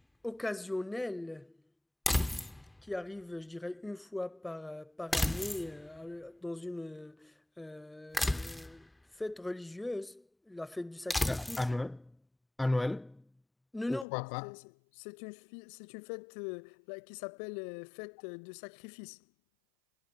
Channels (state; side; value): drops out; right; at 14.1 s